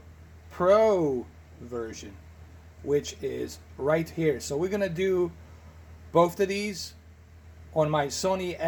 Pro version, which is right here. So we're gonna do both of these on my Sony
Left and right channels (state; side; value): identical; both; correlation 1.00